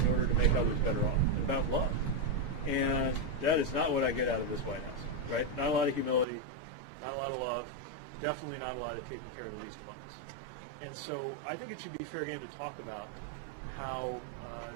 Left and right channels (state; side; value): drops out; left; at 6.2 s